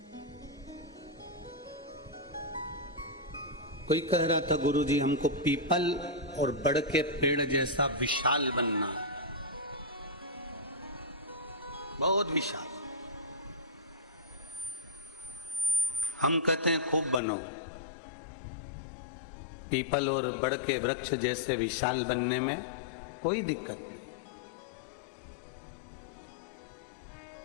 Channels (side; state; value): right; drops out; at 17.2 s